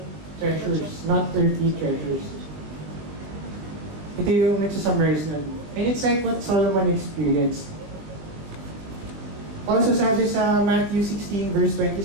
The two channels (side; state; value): left; late; 20 ms